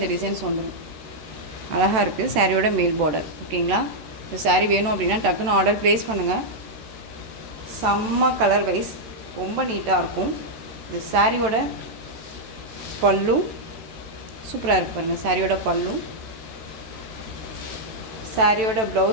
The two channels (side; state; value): left; late; 13 ms